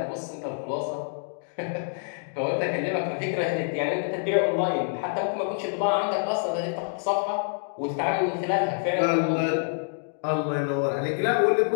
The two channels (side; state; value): right; silent; digital silence